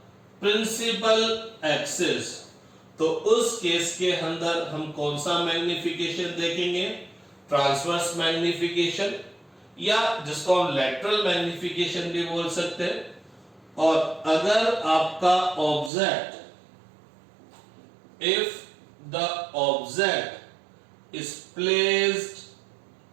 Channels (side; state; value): left; drops out; at 15.9 s